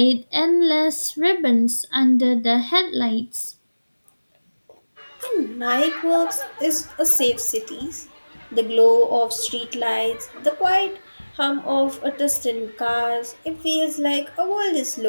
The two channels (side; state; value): both; inverted; correlation -1.00